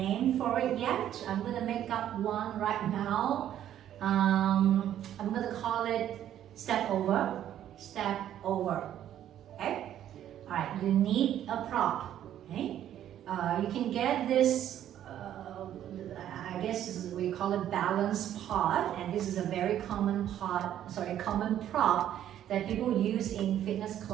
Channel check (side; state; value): left; quieter; 11.1 dB